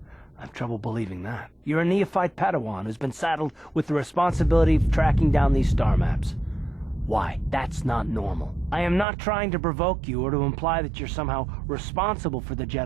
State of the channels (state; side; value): drops out; left; at 9.1 s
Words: have trouble believing that. You're a neophyte Padawan who's been saddled with the responsibility of tracking down these star maps. Why? That's not normal. I am not trying to provoke you or to imply that you're somehow responsible for the